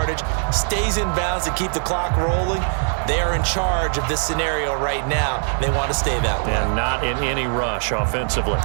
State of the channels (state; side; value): silent; left; digital silence